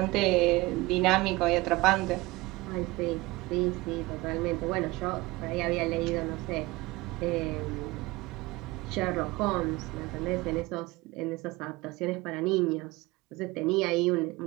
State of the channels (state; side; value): quieter; left; 21.4 dB